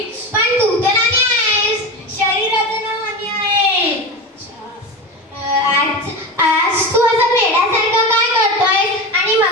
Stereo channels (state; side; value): normal; both; correlation 0.24